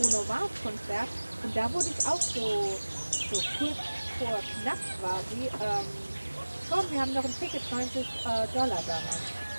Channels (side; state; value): both; inverted; correlation -1.00